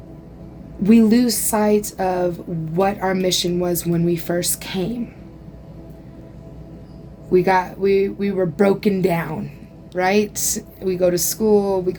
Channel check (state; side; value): identical; both; correlation 1.00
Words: we lose sight of what our mission was when we first came. we were broken down, right? We go to school, we